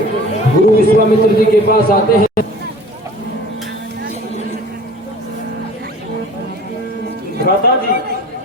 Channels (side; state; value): both; normal; correlation 0.45